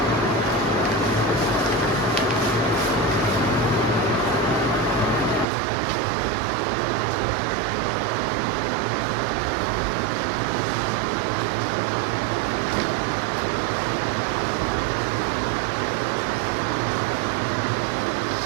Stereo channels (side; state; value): left; drops out; at 5.5 s